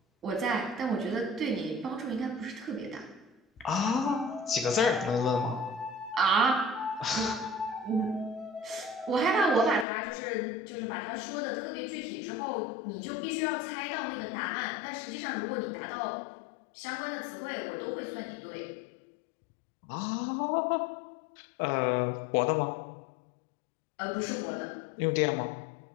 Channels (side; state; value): right; drops out; at 9.9 s